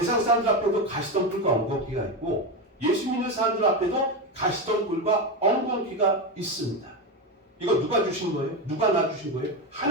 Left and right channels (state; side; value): normal; both; correlation 0.15